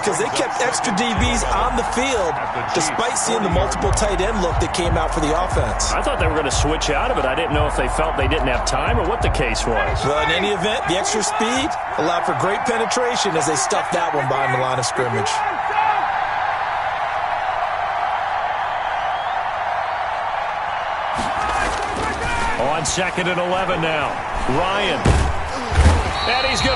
they kept extra DBs on the field despite seeing the multiple tight end look that came out for the offense. I thought they were going to switch out of it. I didn't know if they felt they didn't have time or what the case was. Well, in any event, the extra speed allowed for great penetration as they stuffed that one behind the line of scrimmage. On 2nd and 11 now. Ryan. And he's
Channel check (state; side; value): identical; both; correlation 1.00